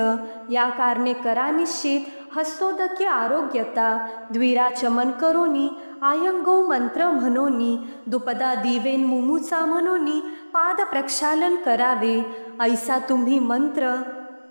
या कारणे करा निश्चित, हस्तोदके आरोग्यता, द्विराचमन करोनी, आयंगो मंत्र म्हणोनी, दुपदा दिवेन मुमुचा म्हणोनी, पाद प्रक्षालन करावे, ऐसा तुम्ही मंत्र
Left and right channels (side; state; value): both; inverted; correlation -1.00